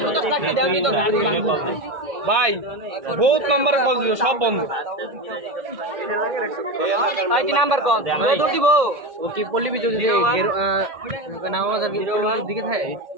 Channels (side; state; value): left; late; 1.8 ms